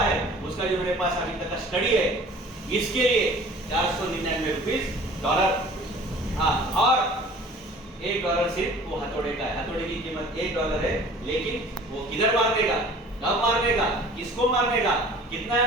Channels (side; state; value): both; normal; correlation 0.47